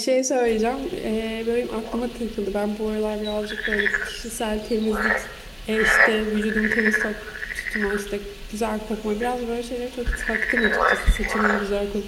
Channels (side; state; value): both; identical; correlation 1.00